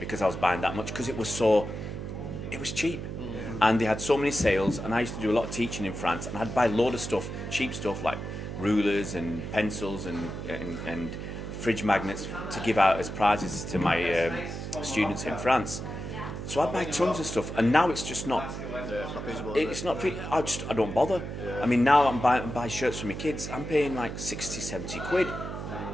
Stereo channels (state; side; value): noise; right; hum, 7 dB below the sound